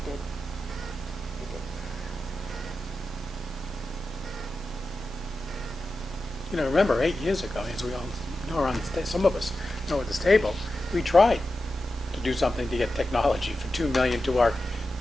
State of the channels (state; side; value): normal; both; correlation 0.92